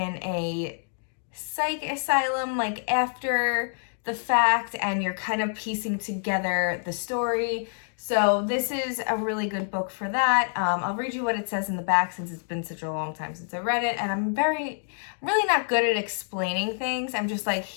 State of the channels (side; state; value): right; silent; digital silence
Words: a psych asylum, like after the fact, and you're kind of piecing together the story. So this is a really good book for that. I'll read you what it says in the back since it's been such a long time since I read it, and I'm really not good at explaining things. I'm just like,